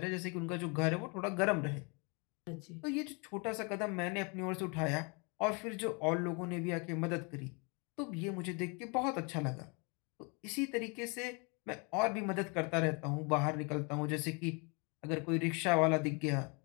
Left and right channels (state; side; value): quieter; right; 32.3 dB